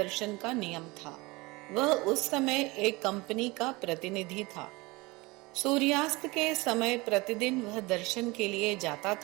का नियम था। वह उस समय एक कंपनी का प्रतिनिधि था। सूर्यास्त के समय प्रतिदिन वह दर्शन के लिए जाता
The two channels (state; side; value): quieter; left; 23.6 dB